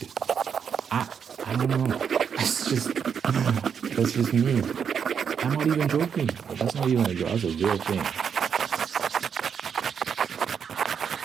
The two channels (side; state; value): left; quieter; 7.2 dB